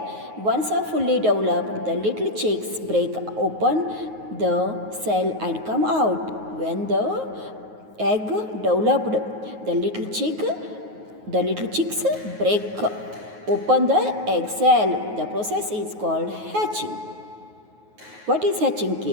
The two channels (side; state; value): left; late; 9.4 ms